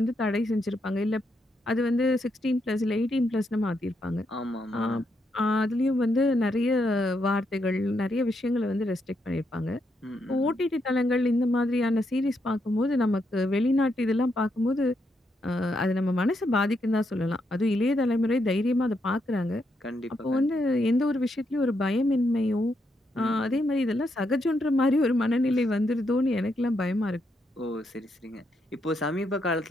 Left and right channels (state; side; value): normal; both; correlation 0.80